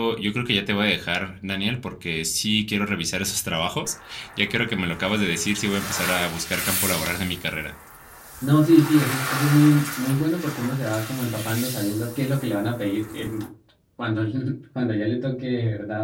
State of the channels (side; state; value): both; identical; correlation 1.00